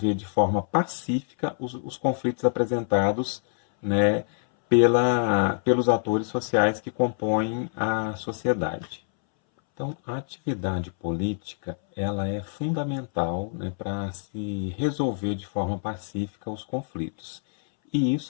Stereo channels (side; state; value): right; silent; 61 dB below the other